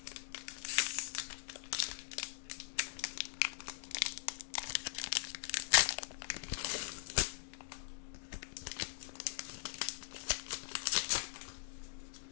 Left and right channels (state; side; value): silent; right; digital silence